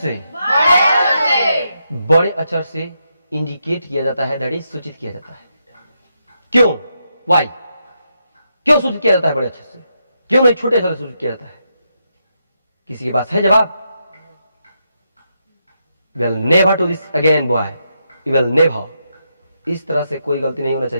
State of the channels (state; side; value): inverted; both; correlation -0.82